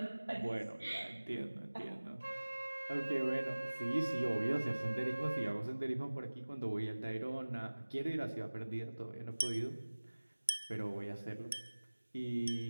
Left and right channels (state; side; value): inverted; both; correlation -1.00